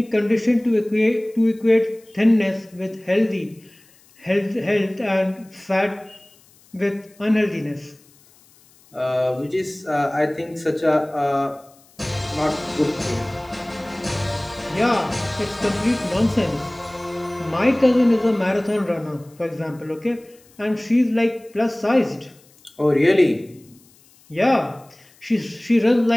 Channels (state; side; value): noise; left; hiss, 29 dB below the sound